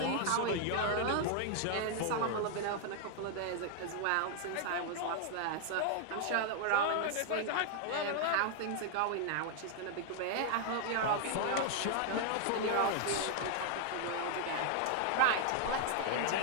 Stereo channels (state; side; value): different; both; correlation 0.00